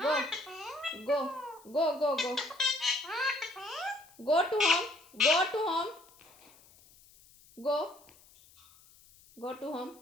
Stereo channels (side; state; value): left; noise; hiss, 26 dB below the sound